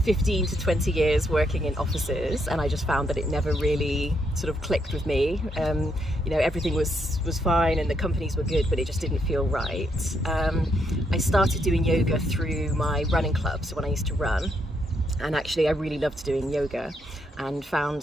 15 to 20 years working in offices, and I just found that it never really sort of clicked with me. You know, everything was fine and the companies were good, but it just didn't feel right. I started doing yoga through my running club, so when I used to run, and actually I really loved doing yoga and found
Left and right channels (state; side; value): normal; both; correlation 0.76